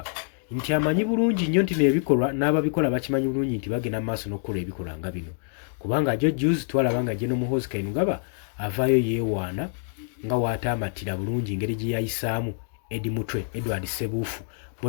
nti amanyi bulungi nnyo nti n'ebikolwa n'ababikola bakimanyi bulungi nti bagenda mu maaso n'okukola ebikolwa nga bino, kubanga jo juzi twalaba nga General Muhoozi Kainerugaba avaayo yeewaana nga waataamatira bulungi engeri gye yayisaamu Edward Ssebuufu,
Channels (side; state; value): right; silent; digital silence